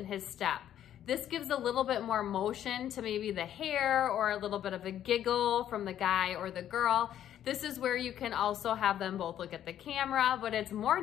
his step. This gives a little bit more motion to maybe the hair or a little bit of a giggle from the guy or the girl. This is where you can also have them both look at the camera, but it's more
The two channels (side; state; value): right; quieter; 10.9 dB